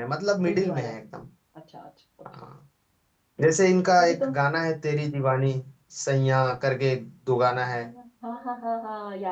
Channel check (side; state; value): both; identical; correlation 1.00